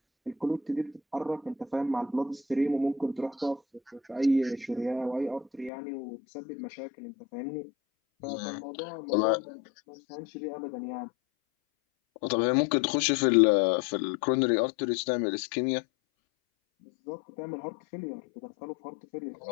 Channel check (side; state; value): right; drops out; at 5.7 s